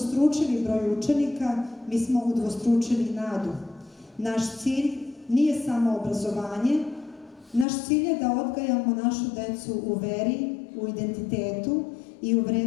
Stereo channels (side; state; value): right; drops out; at 7.7 s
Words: broj učenika, mi smo udvostručili nadu. Naš cilj nije samo obrazovanje, naš cilj je da odgajamo našu decu u veri, u identitetu i u